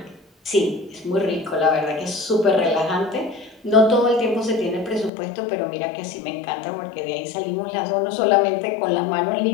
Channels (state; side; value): drops out; right; at 5.1 s